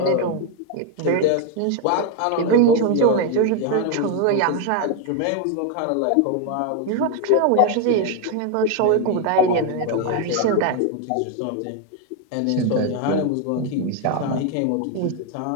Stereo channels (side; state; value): both; different; correlation 0.01